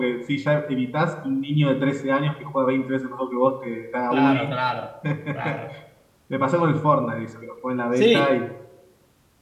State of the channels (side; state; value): both; identical; correlation 1.00